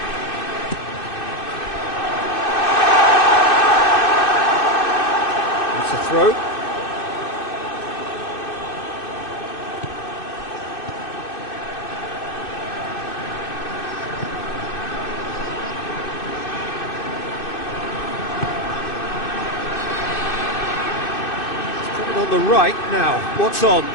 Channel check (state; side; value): late; right; 2.6 ms